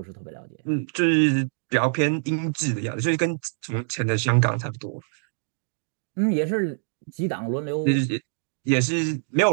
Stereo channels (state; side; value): silent; left; 62 dB below the other